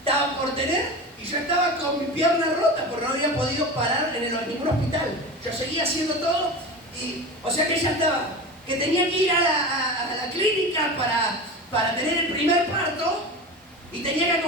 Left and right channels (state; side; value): normal; both; correlation 0.29